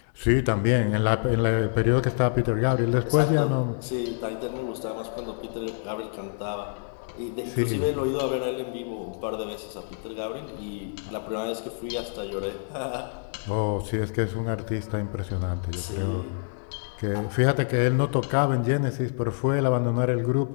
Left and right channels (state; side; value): silent; right; digital silence